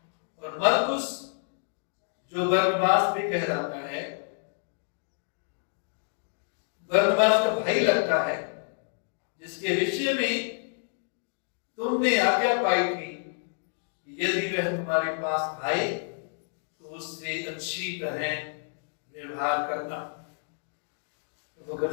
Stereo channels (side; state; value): right; silent; 59 dB below the other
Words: और मरकुस, जो बरनबास भी कहलाता है, बरनबास का भाई लगता है, जिसके विषय में तुमने आज्ञा पाई थी कि यदि वह तुम्हारे पास आए तो उससे अच्छी तरह व्यवहार करना। प्रभु का